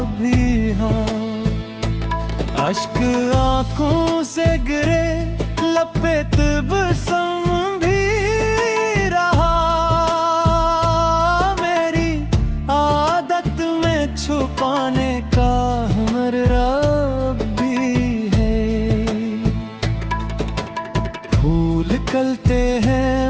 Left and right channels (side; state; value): both; identical; correlation 1.00